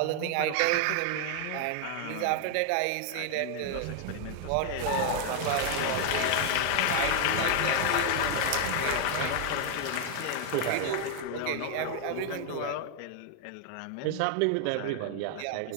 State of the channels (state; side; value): different; both; correlation 0.00